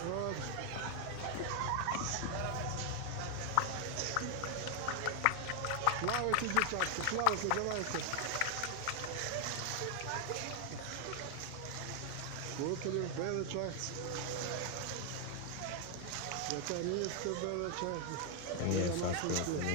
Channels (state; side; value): different; both; correlation 0.00